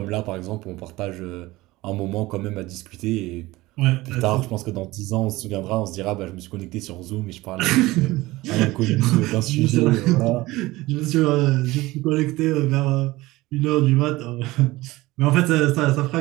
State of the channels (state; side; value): quieter; left; 19.3 dB